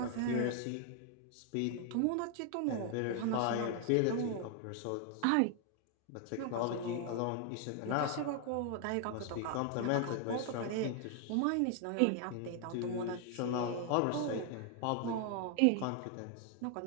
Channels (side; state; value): both; different; correlation 0.00